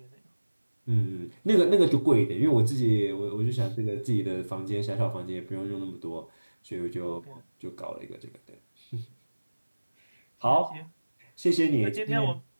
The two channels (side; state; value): both; inverted; correlation -1.00